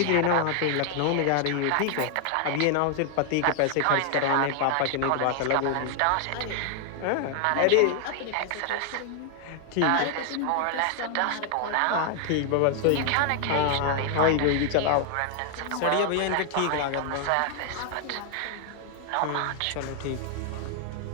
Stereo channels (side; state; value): both; different; correlation 0.00